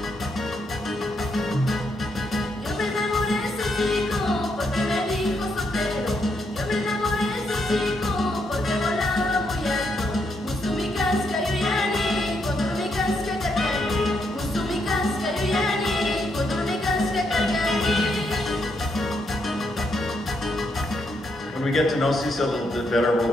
When we get to know Sisa a little bit better,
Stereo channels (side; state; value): both; normal; correlation 0.77